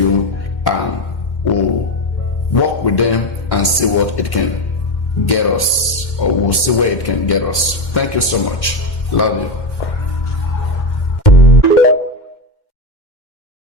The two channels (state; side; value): late; right; 2.1 ms